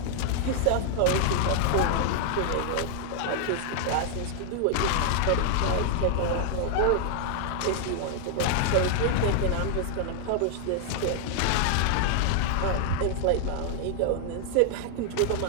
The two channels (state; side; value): different; both; correlation 0.00